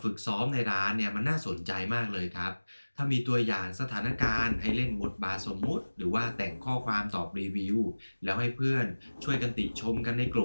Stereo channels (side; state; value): both; inverted; correlation -1.00